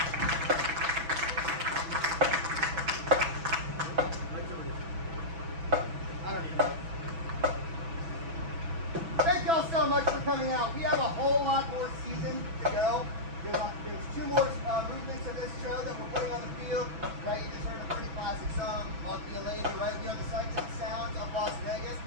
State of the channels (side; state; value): left; late; 6.1 ms